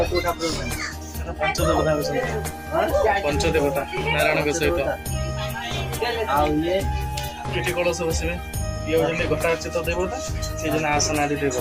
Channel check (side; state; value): both; identical; correlation 1.00